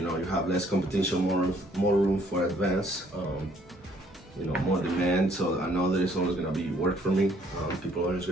have less competition, more room for advance, more demand. So I know there's always gonna be work for me. People are always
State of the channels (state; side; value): normal; both; correlation 0.64